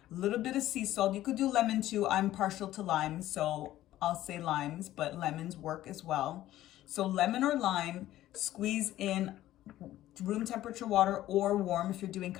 a little bit of sea salt. You could do lemon too. I'm partial to lime, so I'll say limes, but lemons work as well. So lemon or lime, squeeze in room temperature water or warm if you're doing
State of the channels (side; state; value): right; quieter; 14.2 dB